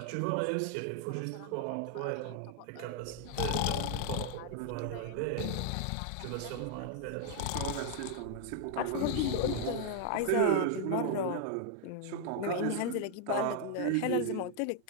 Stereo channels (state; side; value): different; both; correlation 0.00